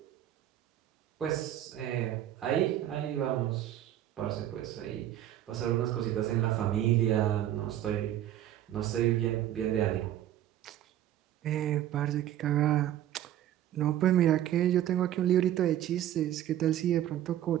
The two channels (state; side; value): quieter; left; 12.2 dB